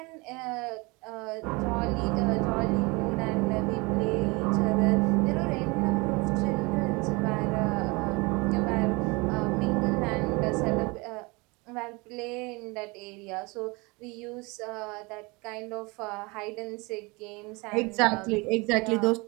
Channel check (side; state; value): left; quieter; 26.3 dB